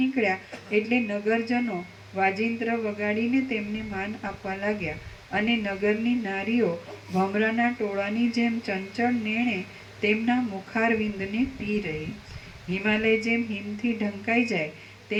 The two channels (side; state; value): both; identical; correlation 1.00